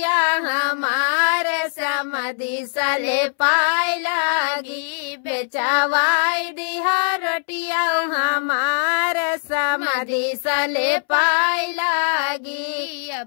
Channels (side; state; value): right; silent; 64 dB below the other